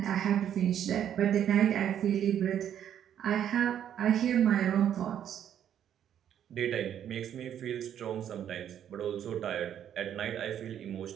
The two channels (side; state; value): left; quieter; 9.8 dB